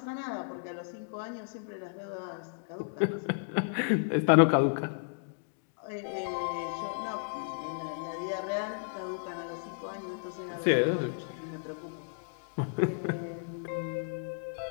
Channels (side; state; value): right; silent; digital silence